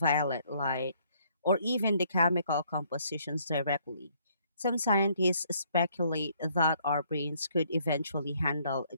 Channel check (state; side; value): inverted; both; correlation -0.66